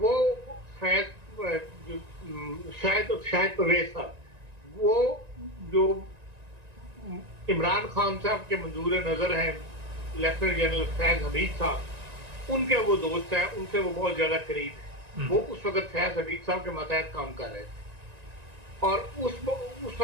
शायद परवेज साहब, वो जो इमरान खान साहब के मंजूर नजर हैं, लेफ्टिनेंट जनरल फैज हमीद साहब, उनके वो दोस्त हैं, उनसे वो बहुत ज्यादा करीब है। वो उस वक्त फैज हमीद साहब के मतहत काम कर रहे थे, और उस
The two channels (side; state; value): left; late; 1.9 ms